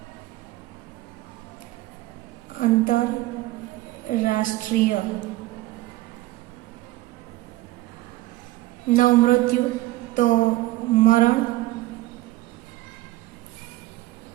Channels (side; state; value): left; quieter; 18.1 dB